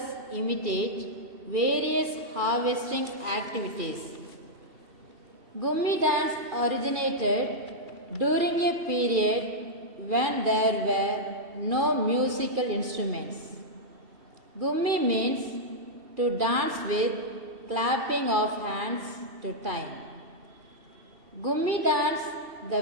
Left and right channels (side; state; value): left; late; 2.4 ms